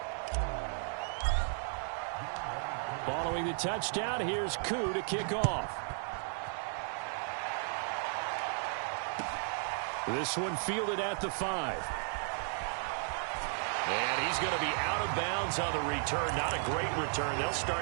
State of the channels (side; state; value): left; silent; 55 dB below the other